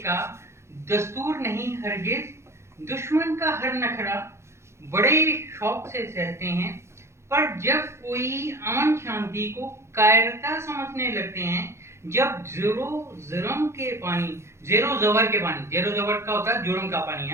दस्तूर नहीं हरगिज, दुश्मन का हर नखरा बड़े शौक से सहते हैं। पर जब कोई अमन शांति को कायरता समझने लगते हैं, जब जेरो जबर के पानी, जेरो जबर का होता है जुर्म का पानी, है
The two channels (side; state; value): left; late; 0.13 ms